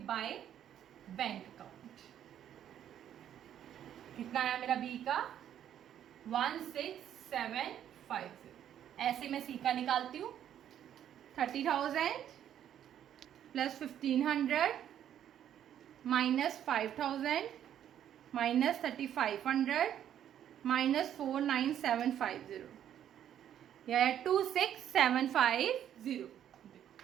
बाय बैंक अकाउंट। कितना आया मेरा बी का 16750। ऐसे मैं सी का निकालती हूँ 30,000 प्लस 1500 माइनस 5000 माइनस 3500 माइनस 49750, यह है 26750।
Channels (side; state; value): left; quieter; 10.3 dB